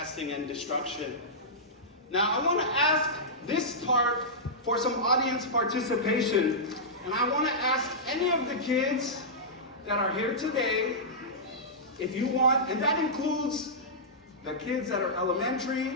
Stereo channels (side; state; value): both; normal; correlation -0.13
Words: and destruction. Now, I want to ask this part for some audience participation. And I want to ask any of the kids that are here today, if you want, and that includes the kids that are